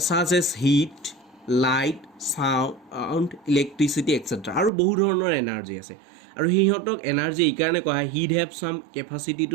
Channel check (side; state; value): left; drops out; at 4.7 s